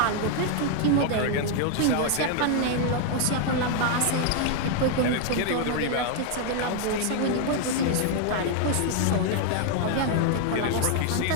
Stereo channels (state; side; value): different; both; correlation 0.00